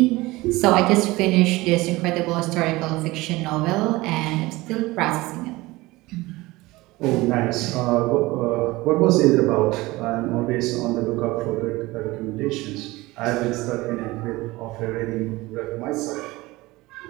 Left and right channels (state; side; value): quieter; left; 20.4 dB